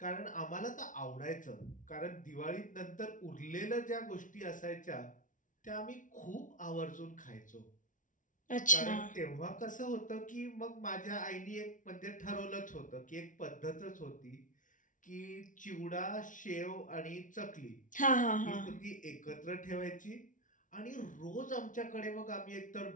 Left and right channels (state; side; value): late; right; 0.38 ms